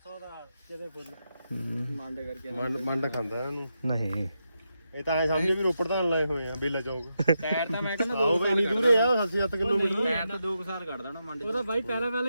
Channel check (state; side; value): inverted; both; correlation -0.85